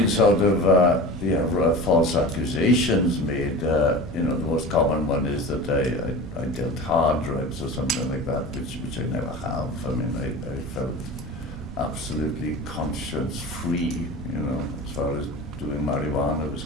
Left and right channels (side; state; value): both; normal; correlation 0.33